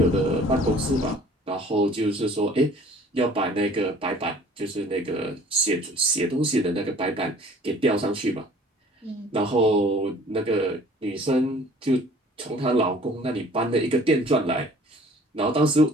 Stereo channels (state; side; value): normal; both; correlation 0.52